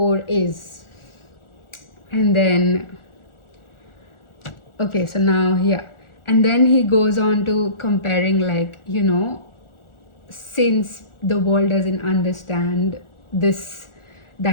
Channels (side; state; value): right; late; 1.4 ms